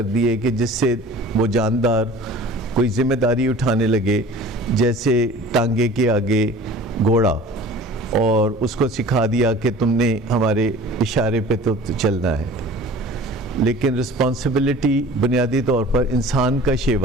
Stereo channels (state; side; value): normal; both; correlation 0.43